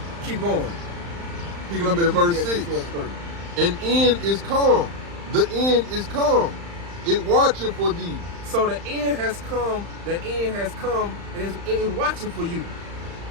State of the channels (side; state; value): left; late; 35 ms